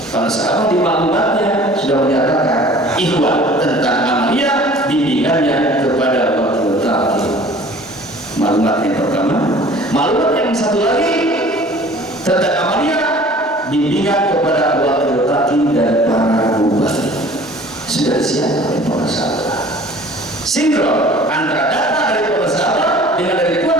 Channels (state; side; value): normal; both; correlation 0.48